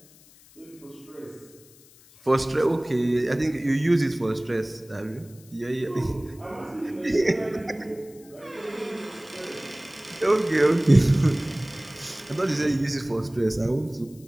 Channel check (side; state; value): left; noise; hiss, 25 dB below the sound